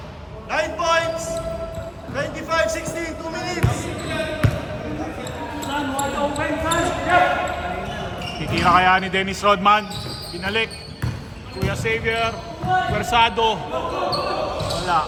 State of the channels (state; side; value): identical; both; correlation 1.00